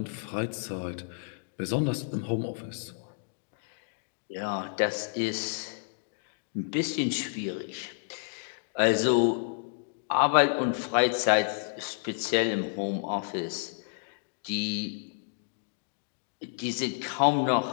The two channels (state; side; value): silent; right; digital silence